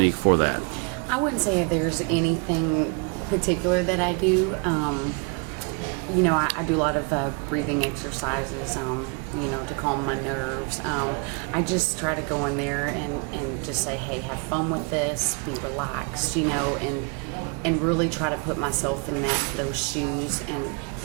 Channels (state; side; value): quieter; left; 33.5 dB